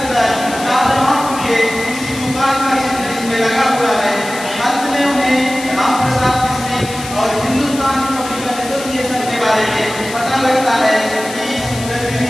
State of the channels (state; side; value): noise; left; hiss, 12 dB below the sound